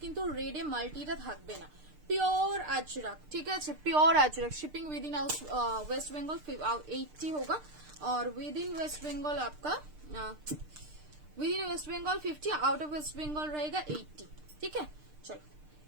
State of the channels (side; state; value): left; late; 6.6 ms